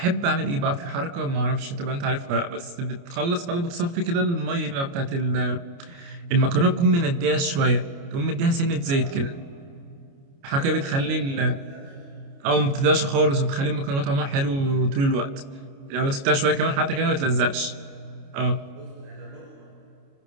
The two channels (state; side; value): late; left; 29 ms